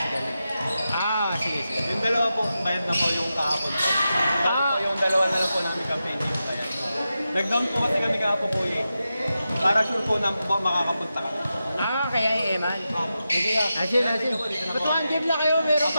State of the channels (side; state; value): both; inverted; correlation -0.90